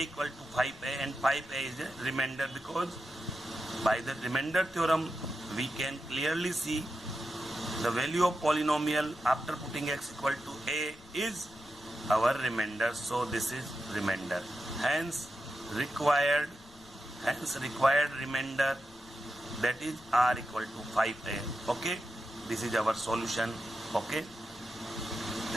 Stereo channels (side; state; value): left; noise; rumble, 23 dB below the sound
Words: equal to 5a, and 5a is a remainder, because by the remainder theorem we can clearly see the value of polynomial after putting x equal to a is our remainder, so this is remainder. Hence required remainder, that is r equal to 5a. Okay, this is our solution. Okay,